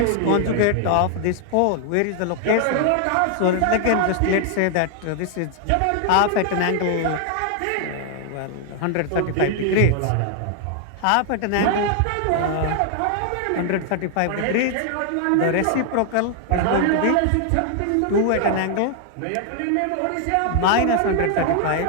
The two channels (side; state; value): both; different; correlation 0.00